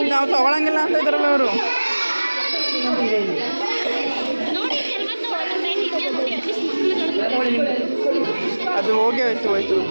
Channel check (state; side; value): inverted; both; correlation -1.00